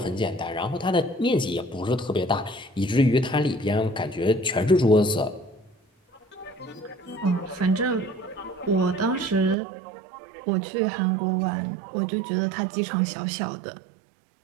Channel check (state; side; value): drops out; left; at 9.6 s